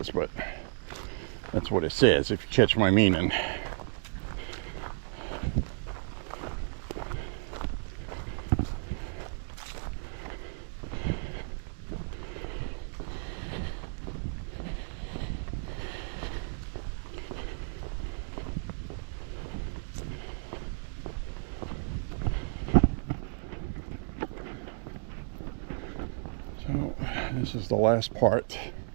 but that's what it says, if you catch my meaning. So this is the last part,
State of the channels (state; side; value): silent; left; digital silence